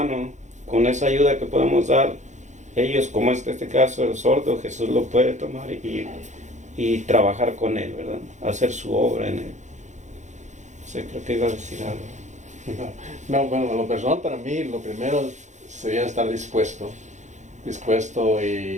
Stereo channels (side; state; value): left; late; 0.35 ms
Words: con esa ayuda que podemos dar, ellos, como este caso, el sordo, Jesús lo puede tomar y trabajar con él, ¿verdad? Hacer su obra en él. O sea, creo que iba a decir algo. No, bueno, lo personal para mí, lo primero sería estar dispuesto